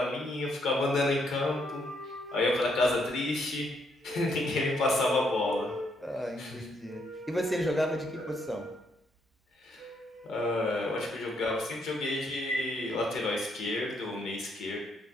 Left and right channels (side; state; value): both; normal; correlation 0.74